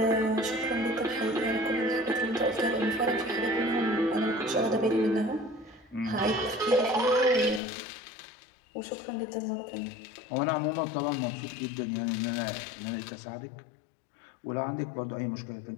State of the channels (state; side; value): drops out; right; at 7.6 s